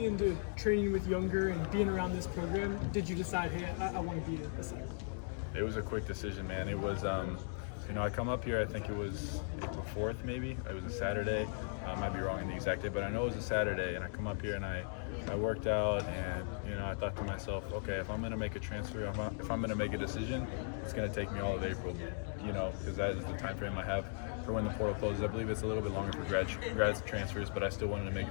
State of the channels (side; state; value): right; silent; digital silence